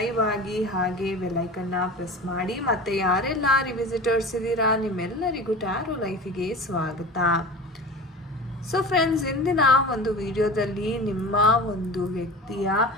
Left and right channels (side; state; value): both; normal; correlation 0.34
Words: ಆಗಿ ಹಾಗೆ ಬೆಲ್ಲೈಕನ್ನ ಪ್ರೆಸ್ ಮಾಡಿ. ಮತ್ತು ಯಾರೆಲ್ಲ ರಿವಿಸಿಟರ್ಸ್ ಇದ್ದೀರಾ ನಿಮ್ಮೆಲ್ಲರಿಗೂ ಟ್ಯಾರೋ ಲೈಫಿಗೆ ಸ್ವಾಗತ. ಸೊ ಫ್ರೆಂಡ್ಸ್, ಇಂದಿನ ಒಂದು ವಿಡಿಯೋದಲ್ಲಿ ನಿಮ್ಮ ಒಂದು ವ್ಯಕ್ತಿಯ